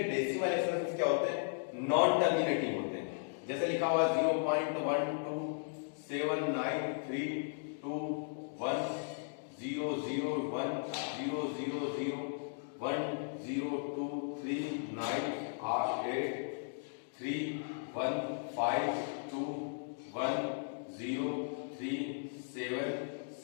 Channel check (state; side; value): silent; right; digital silence